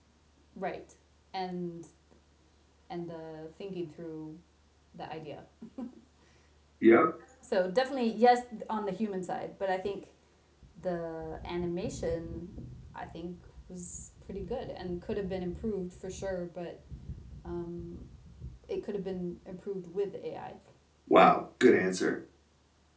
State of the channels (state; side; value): identical; both; correlation 1.00